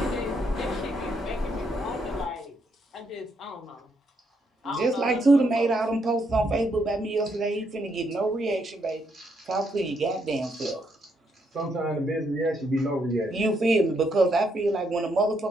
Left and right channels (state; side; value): normal; both; correlation 0.76